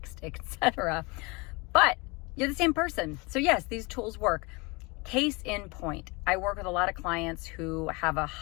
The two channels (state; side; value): quieter; right; 27.2 dB